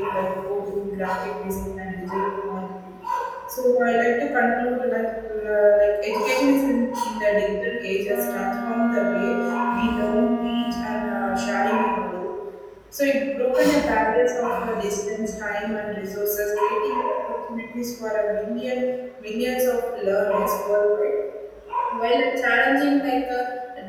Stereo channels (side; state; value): both; identical; correlation 1.00